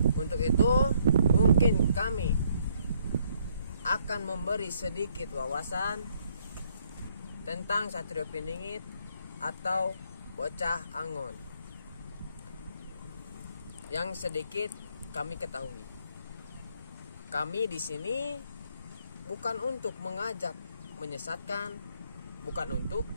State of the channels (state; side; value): inverted; both; correlation -0.69